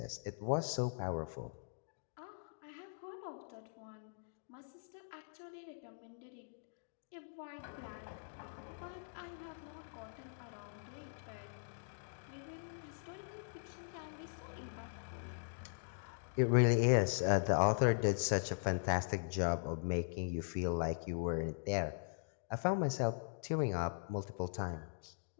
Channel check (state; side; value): silent; right; digital silence